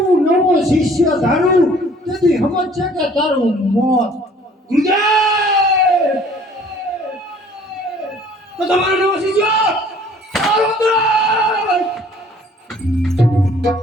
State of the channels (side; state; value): both; normal; correlation 0.55